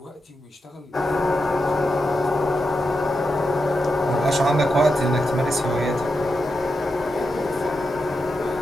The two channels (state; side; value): normal; both; correlation 0.87